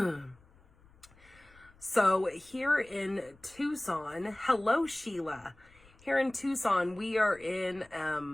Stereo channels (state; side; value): noise; left; rumble, 27 dB below the sound